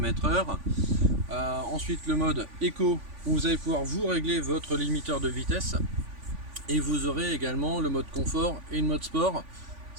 Ensuite le mode Eco où vous allez pouvoir vous régler votre limiteur de vitesse. Et vous aurez également le mode confort et le mode sport.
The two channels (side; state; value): left; late; 3.5 ms